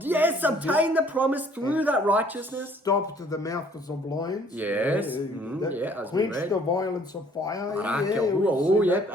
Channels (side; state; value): both; normal; correlation 0.58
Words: the promise through that righteousness. Stopped the mouths of lions. Quenched the violence of fire.